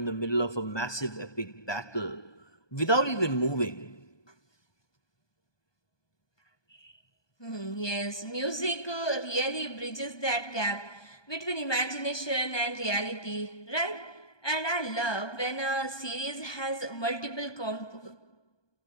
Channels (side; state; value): right; late; 1.2 ms